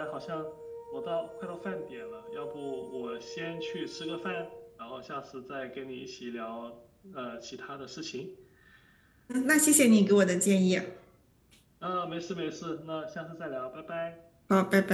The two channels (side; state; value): both; identical; correlation 1.00